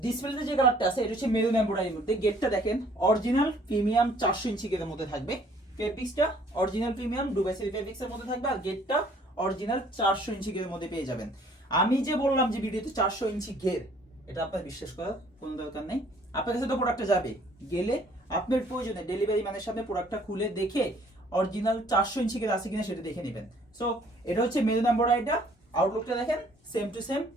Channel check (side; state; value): both; normal; correlation 0.59